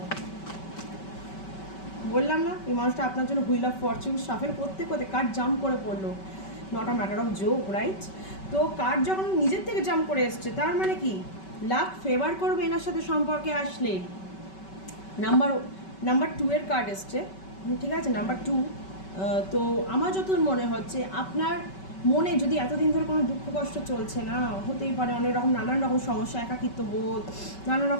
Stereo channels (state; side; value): late; right; 5.2 ms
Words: বললাম না এই মানুষটা আপনার জন্য হুইল অফ ফরচুন সাফেল করতে করতে কার্ড জাম্প করে পড়লো, not a matter of joke, right? তো কার্ড যখন নিজের থেকে জাম্প করে এসছে, তার মানে কি লাক ফেভার করবে এনার সাথে সম্পর্কে আসলে। নাম্বার 2 এর কার্ড এসছে, ঠিক আছে? নাম্বার 2। তো আমার যত মনে হচ্ছে আপনার মনে যদি এতদিন ধরে কোনো দুঃখ কষ্ট চলছে না, হতেই পারে অনেক রকম নানান রকম সমস্যা, একাকিত্ব বোধ, নানান